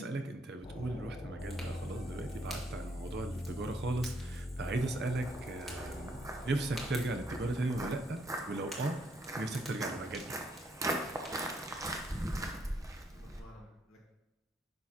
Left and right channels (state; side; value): normal; both; correlation 0.72